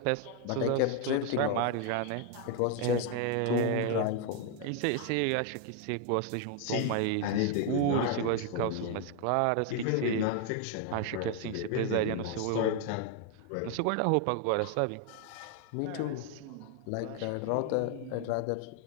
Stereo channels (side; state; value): both; different; correlation 0.01